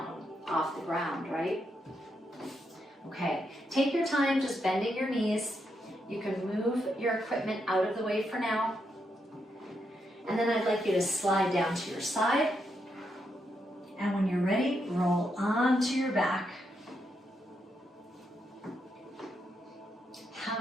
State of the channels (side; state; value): both; normal; correlation 0.81